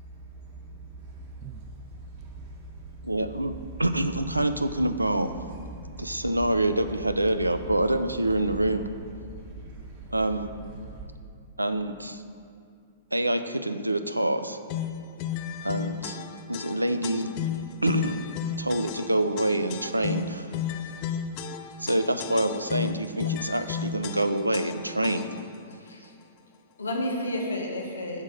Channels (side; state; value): both; inverted; correlation -0.72